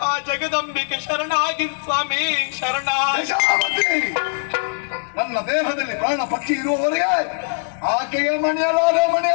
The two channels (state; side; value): silent; right; digital silence